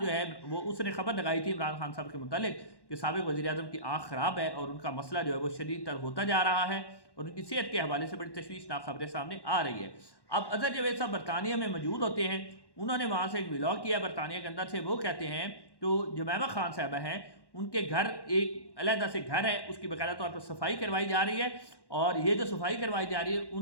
جو ہے وہ اس نے خبر لگائی تھی عمران خان صاحب کے متعلق کہ سابق وزیر اعظم کی آنکھ خراب ہے اور ان کا مسئلہ جو ہے وہ شدید تر ہوتا جا رہا ہے اور ان کی صحت کے حوالے سے بڑی تشویشناک خبریں سامنے آ رہی ہے۔ اب اظہر جاوید صاحب برطانیہ میں موجود ہوتے ہیں، انہوں نے وہاں سے ایک ولاگ کیا برطانیہ کے اندر سے۔ وہ کہتے ہیں تو جمیمہ خان صاحبہ ہیں، ان کے گھر ایک علیحدہ سے گھر ہے، اس کی باقاعدہ طور پر صفائی کروائی جا رہی ہے اور یہ جو صفائی کروائی جا رہی ہے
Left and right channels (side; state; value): right; late; 1.1 ms